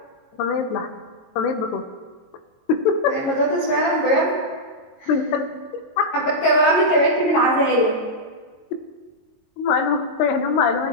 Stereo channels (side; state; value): right; late; 22 ms